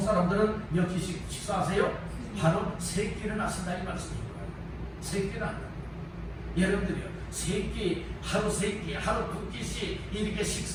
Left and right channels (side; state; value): both; identical; correlation 1.00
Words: 몇 끼씩 식사하세요? 하루 3끼는 하신다 이 말씀입니다. 3끼는 안 돼요. 여러분들이요 3끼, 하루 3끼, 하루 2끼씩 이렇게